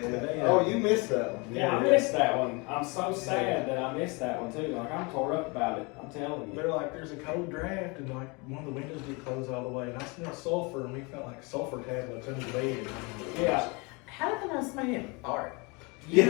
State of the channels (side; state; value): right; quieter; 28.7 dB